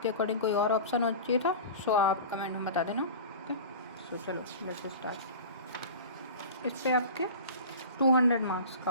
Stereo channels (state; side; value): inverted; both; correlation -0.35